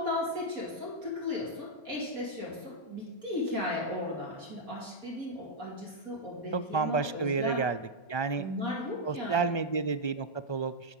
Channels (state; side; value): late; right; 1.3 ms